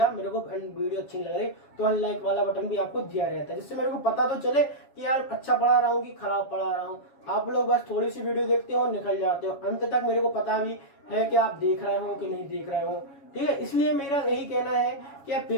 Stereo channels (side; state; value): right; late; 7.2 ms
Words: मेरे को वीडियो अच्छी नहीं लग रही, तो अनलाइक वाला बटन भी आपको दिया रहता है, जिससे मेरे को पता तो चले कि यार अच्छा पढ़ा रहा हूँ कि खराब पढ़ा रहा हूँ। आप लोग बस थोड़ी सी वीडियो देखते हो और निकल जाते हो, अंत तक मेरे को पता भी है कि आप देख रहे हो कि नहीं देख रहे हो। ठीक है, इसलिए मेरा यही कहना है कि अब